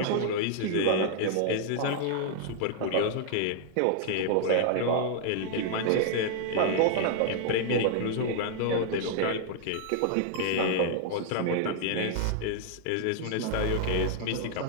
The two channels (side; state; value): both; different; correlation -0.01